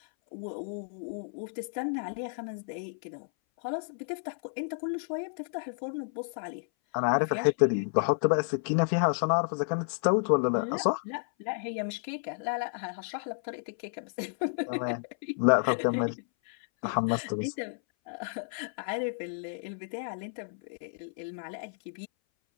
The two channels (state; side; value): silent; right; 57 dB below the other